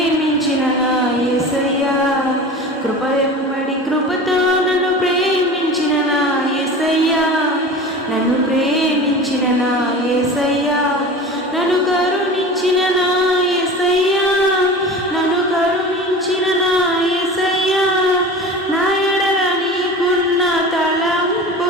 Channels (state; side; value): normal; both; correlation 0.34